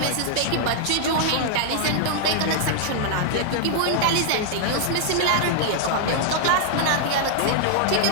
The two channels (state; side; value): different; both; correlation -0.01